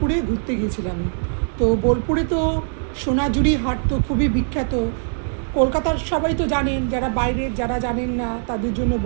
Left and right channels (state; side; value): silent; left; digital silence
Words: ঘুরতে গিয়েছিলাম। তো বোলপুরে তো সোনাঝুরি হাট তো খুবই বিখ্যাত। কলকাতার সবাই তো জানেন, যারা বাইরের যারা জানেন না তাদের জন্য